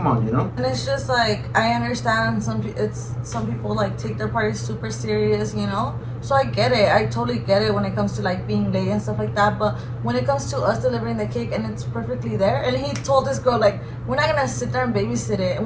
on, you know. And it's just like I understand some people like take their parties super serious, you know. So I get it. I totally get it when it comes to like being late and stuff like that. But when it comes to us delivering the cake and it's perfectly there, and he told this girl like, we're not gonna sit there and babysit it, and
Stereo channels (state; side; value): identical; both; correlation 1.00